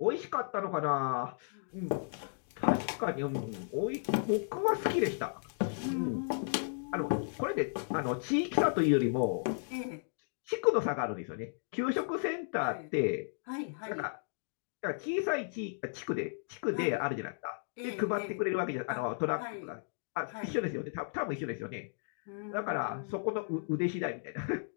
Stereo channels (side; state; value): right; silent; digital silence